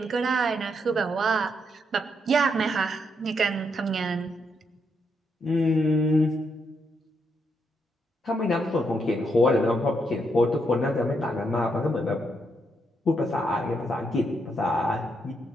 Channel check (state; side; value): normal; both; correlation 0.78